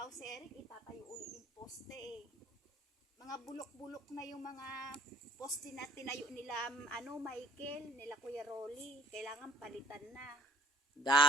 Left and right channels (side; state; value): both; normal; correlation 0.55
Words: si Eric, itatayo ulit yung poste, Mga bulok-bulok na yung mga poste na tinayo nila, Michael, nila Kuya Rolly. Kailangan palitan na.